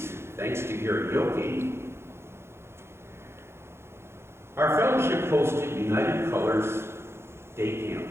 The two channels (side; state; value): left; late; 0.12 ms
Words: thanks to karaoke, our fellowship hosted United Colors Day